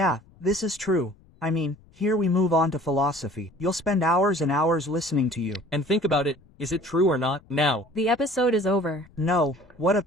this is true. I mean, here we move on to philosophy. You'll spend hours and hours listening to you. And think about it, is it true or not? Now, The episode is over. No, what a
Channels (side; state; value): left; noise; rumble, 28 dB below the sound